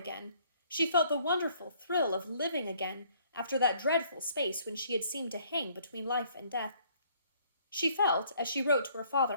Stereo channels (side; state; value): both; inverted; correlation -0.62